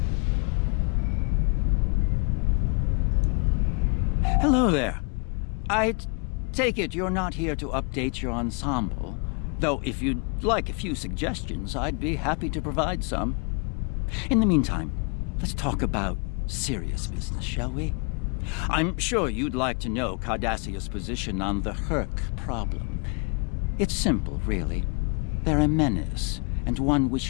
Hello there. I take it you're not here to update your ensemble, though if you'd like a few suggestions, I'd be happy to provide some. In the meantime, let's talk about serious business, shall we? I'm sure you'd like to know Cardassia's position on the Herc problem. It's simple, really. They're a menace, and one we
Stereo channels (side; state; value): right; quieter; 35.9 dB